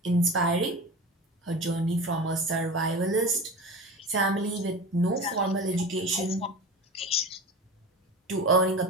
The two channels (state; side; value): normal; both; correlation 0.30